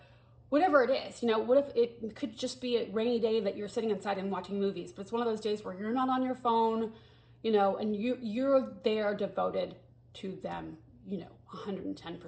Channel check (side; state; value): both; identical; correlation 1.00